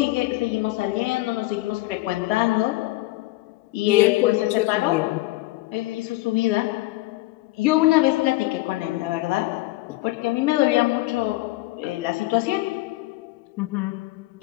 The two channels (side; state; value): right; quieter; 19.2 dB